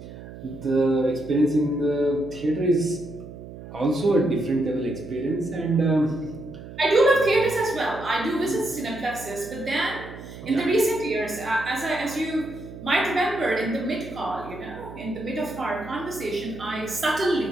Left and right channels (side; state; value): right; noise; hum, 14 dB below the sound